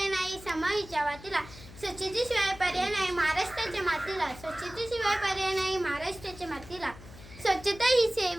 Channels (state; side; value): noise; left; hum, 17 dB below the sound